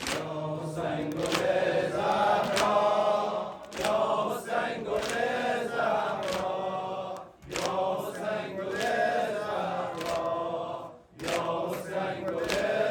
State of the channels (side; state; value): both; identical; correlation 1.00